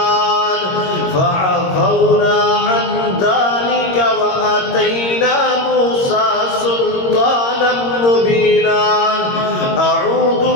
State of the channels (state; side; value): late; right; 22 ms